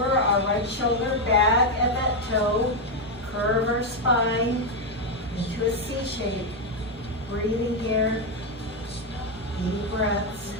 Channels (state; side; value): normal; both; correlation 0.04